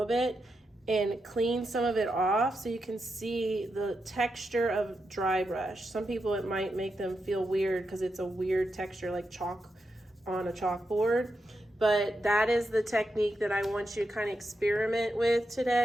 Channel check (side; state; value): both; normal; correlation 0.86